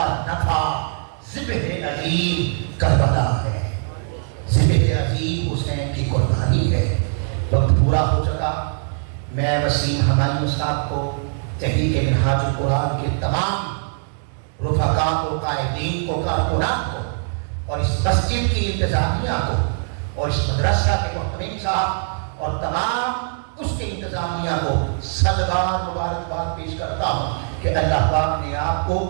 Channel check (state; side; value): silent; left; 65 dB below the other